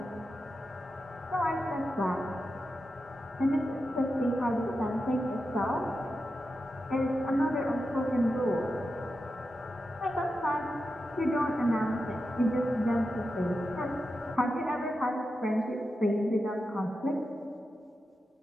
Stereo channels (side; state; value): both; normal; correlation 0.89